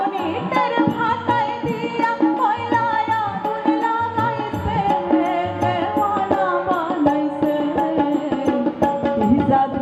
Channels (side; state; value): both; identical; correlation 1.00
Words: ইটের ভাটায় দিয়া কয়লায় আগুন লাগাইছে, দেওয়ানা বানাইছে। জাদু